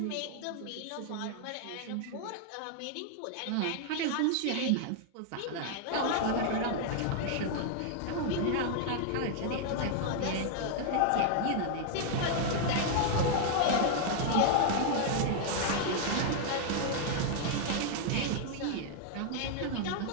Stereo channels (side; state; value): both; different; correlation 0.00